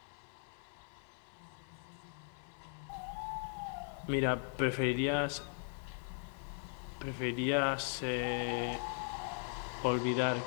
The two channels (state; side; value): silent; right; 52 dB below the other